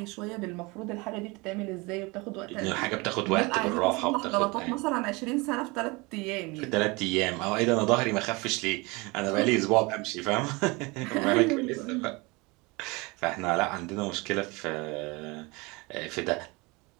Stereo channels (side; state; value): left; quieter; 25.7 dB